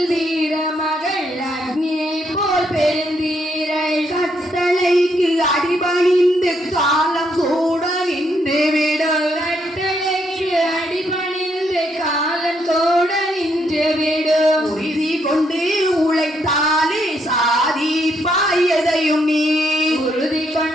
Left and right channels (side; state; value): both; normal; correlation 0.75